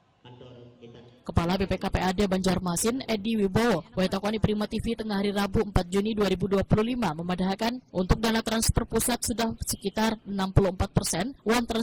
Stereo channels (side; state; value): both; identical; correlation 1.00